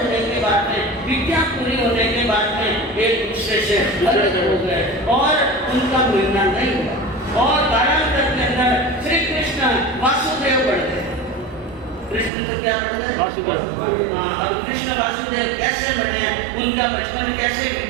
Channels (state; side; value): drops out; left; at 12.3 s